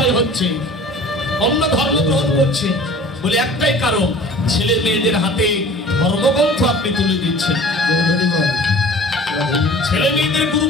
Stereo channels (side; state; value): both; normal; correlation 0.45